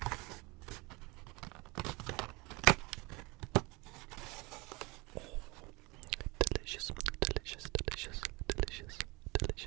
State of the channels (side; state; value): left; quieter; 25.2 dB